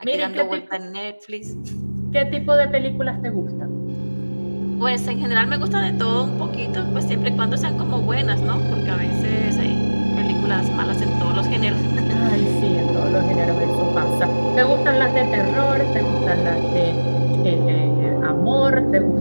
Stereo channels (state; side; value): inverted; both; correlation -1.00